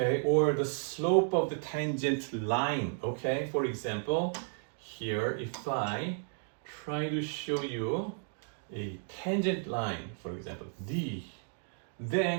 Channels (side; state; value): left; silent; 56 dB below the other